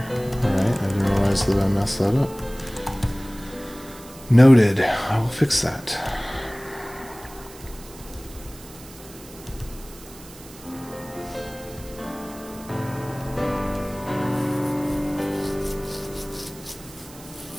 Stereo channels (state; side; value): noise; right; hiss, 19 dB below the sound